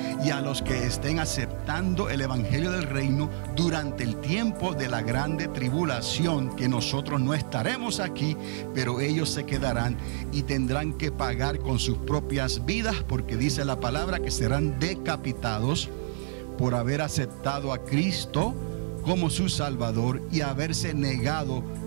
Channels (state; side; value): silent; left; digital silence